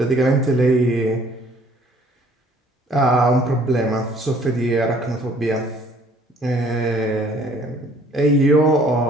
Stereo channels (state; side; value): normal; both; correlation 0.58